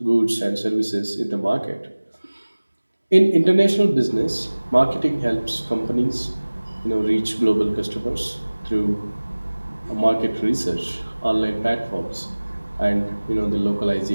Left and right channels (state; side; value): inverted; both; correlation -1.00